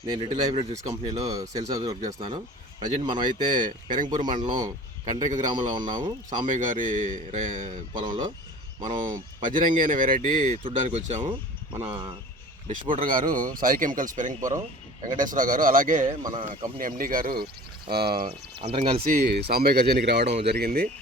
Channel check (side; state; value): both; normal; correlation 0.42